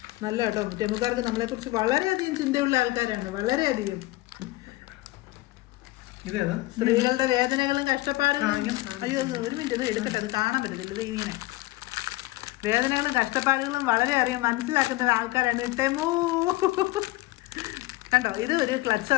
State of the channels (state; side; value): quieter; right; 19.2 dB